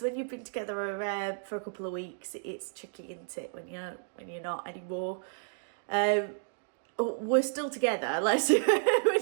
when you've been together for a couple of weeks, it's tricky, isn't it, when you're not anymore. We're still together, we're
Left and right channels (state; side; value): silent; left; digital silence